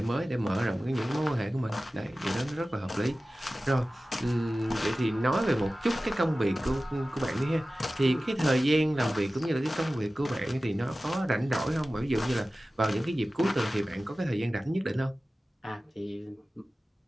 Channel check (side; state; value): both; normal; correlation 0.96